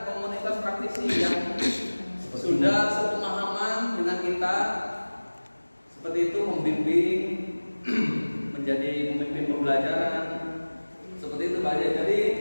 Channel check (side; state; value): both; inverted; correlation -1.00